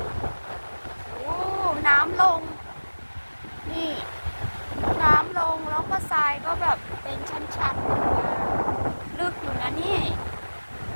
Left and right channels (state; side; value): inverted; both; correlation -1.00